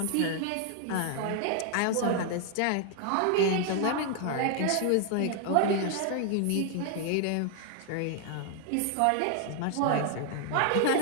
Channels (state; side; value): different; both; correlation 0.00